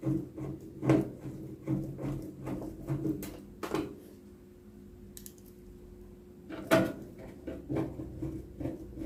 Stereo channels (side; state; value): both; identical; correlation 1.00